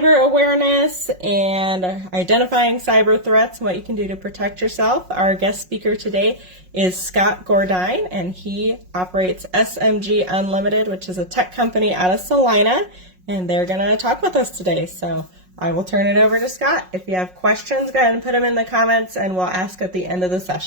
awareness and identifying cyber threats and what you can do to protect yourself. Our guest speaker today is Scott Gordine, and he operates SMG Unlimited, which is a tech company out of Salina, and they're going to talk with us today. So I will turn it over to Scott. If you have questions, go ahead and put them in the comments, and we'll ask at the end of the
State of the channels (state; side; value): late; left; 5.5 ms